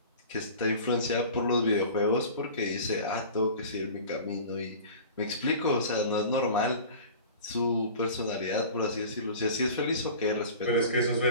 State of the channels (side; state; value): both; inverted; correlation -0.40